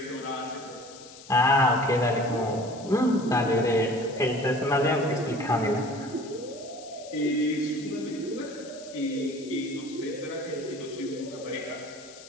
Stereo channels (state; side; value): noise; left; hiss, 18 dB below the sound